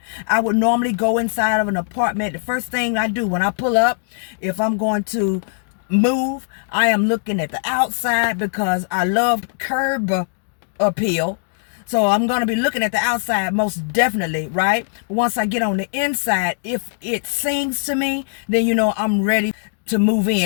I would normally go inside of an apartment. The first thing I do when I pull up, if I'm going to move, I am looking at the outside because I love curb appeal. So I'm going to be looking at the outside most definitely, right? Once I get on the inside, if it sings to me, then I'm ready to move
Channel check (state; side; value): silent; right; digital silence